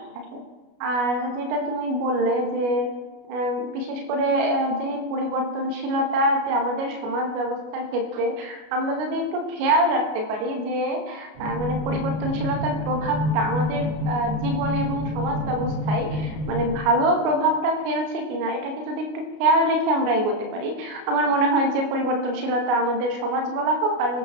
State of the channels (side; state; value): left; late; 33 ms